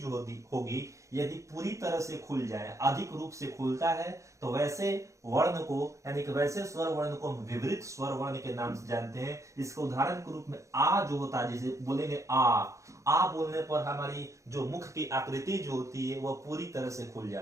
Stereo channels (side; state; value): left; late; 0.15 ms